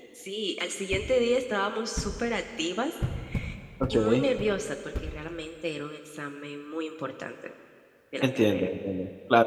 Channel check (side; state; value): both; identical; correlation 1.00